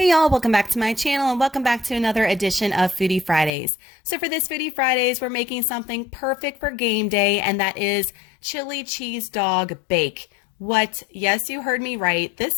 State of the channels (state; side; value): drops out; right; at 3.5 s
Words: y'all, welcome back to my channel and welcome back to another edition of Foodie Fridays. So for this Foodie Fridays, we're making something perfect for game day, and that is chili cheese dog bake. What? Yes, you heard me right.